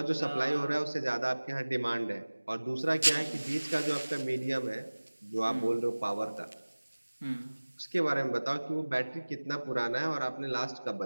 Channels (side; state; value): both; inverted; correlation -1.00